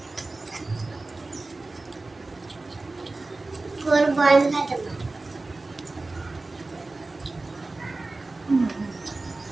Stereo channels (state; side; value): quieter; left; 3.3 dB